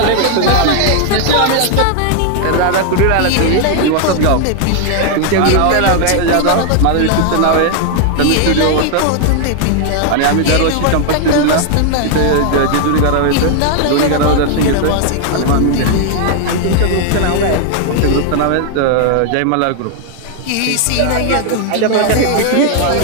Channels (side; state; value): both; different; correlation 0.00